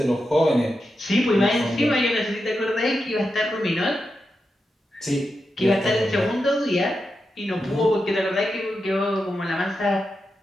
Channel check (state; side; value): normal; both; correlation 0.88